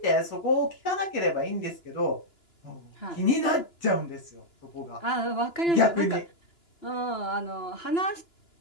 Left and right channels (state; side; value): late; right; 2.9 ms